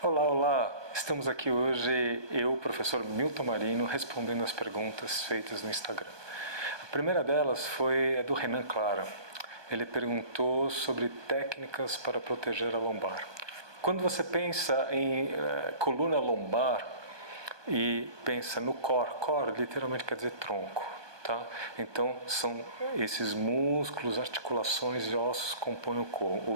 Olá, olá! Estamos aqui hoje, eu, professor Milton Marino, respondendo as perguntas feitas no Instagram. A primeira delas foi a do Renan Clara. Ele perguntou sobre técnicas para proteger a lombar. Quando você pensa em coluna lombar e pensa no core literalmente quer dizer tronco. Tá? Então, são esses músculos, articulações e ossos que compõem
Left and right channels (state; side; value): late; left; 1.2 ms